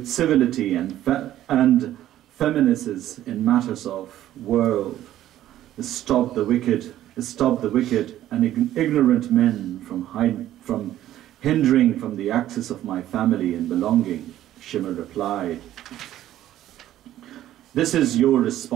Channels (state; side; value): quieter; left; 13.0 dB